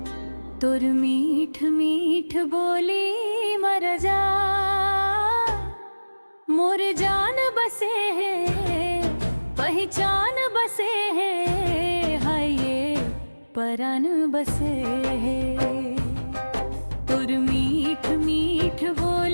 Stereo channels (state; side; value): inverted; both; correlation -1.00